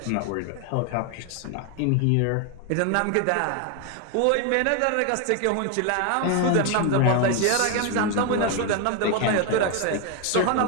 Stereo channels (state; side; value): different; both; correlation 0.01